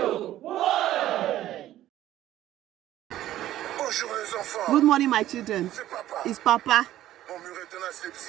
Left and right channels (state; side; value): quieter; left; 13.5 dB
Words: Bonjour les enfants. Good morning, my children. C'est papa. It's Papa. Mon mur est tenace, le